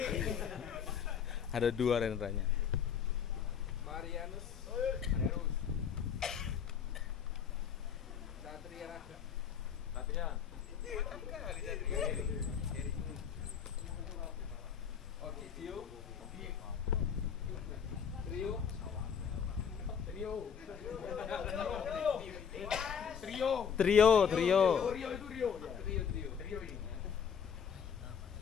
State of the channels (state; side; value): quieter; right; 7.4 dB